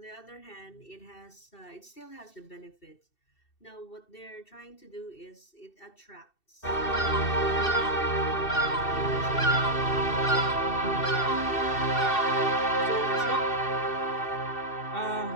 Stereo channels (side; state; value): right; late; 2.7 ms